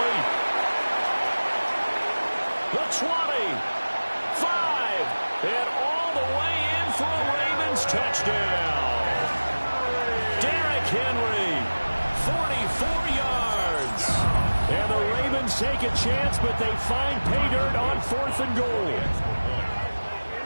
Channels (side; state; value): both; inverted; correlation -1.00